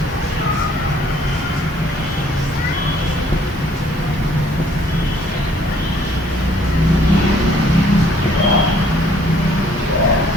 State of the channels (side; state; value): both; normal; correlation 0.61